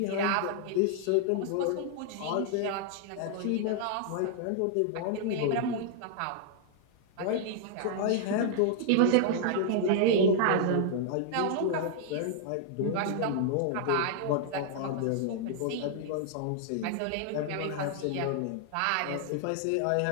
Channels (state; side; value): different; both; correlation -0.01